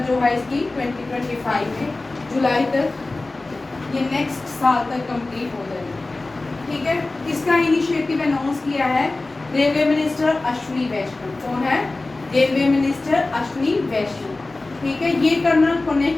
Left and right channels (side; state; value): right; quieter; 3.2 dB